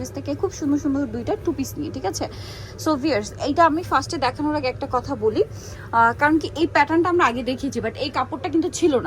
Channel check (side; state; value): both; identical; correlation 1.00